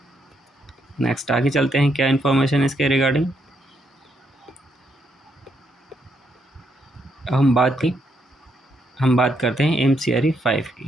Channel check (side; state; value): both; normal; correlation 0.76